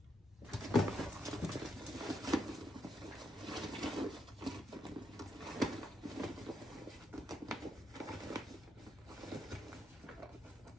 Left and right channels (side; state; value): both; normal; correlation 0.79